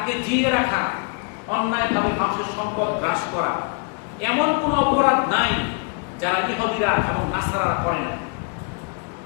জিয়ে রাখা, অন্যায়ভাবে মানুষের সম্পদ গ্রাস করা, এমন কোন অপরাধ নাই যারা ইহুদিরা এবং নাসারারা করে না।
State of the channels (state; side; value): quieter; right; 35.7 dB